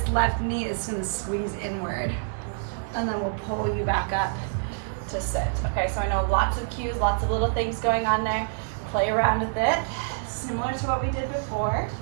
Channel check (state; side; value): silent; left; digital silence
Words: left knee is gonna squeeze inward, and then we'll pull you back up to sit. Okay, so I know lots of cues, lots of little things going on there. Play around with it. Similar to what we did before,